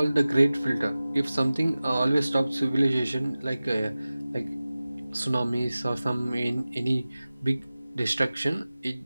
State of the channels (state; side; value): inverted; both; correlation -0.97